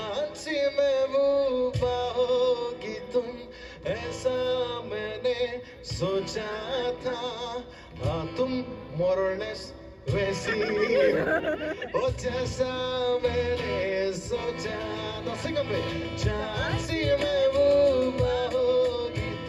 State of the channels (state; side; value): identical; both; correlation 1.00